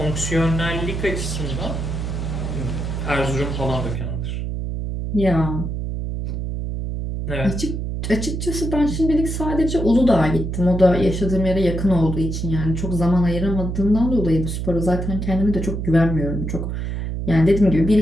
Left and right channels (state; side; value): noise; right; hum, 3 dB below the sound